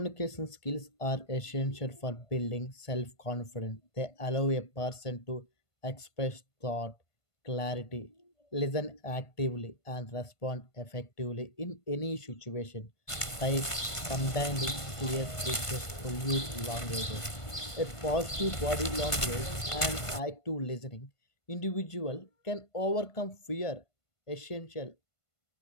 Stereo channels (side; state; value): right; late; 1.5 ms